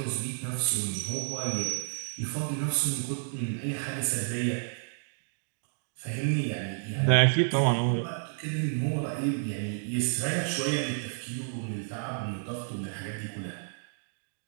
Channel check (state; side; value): silent; left; digital silence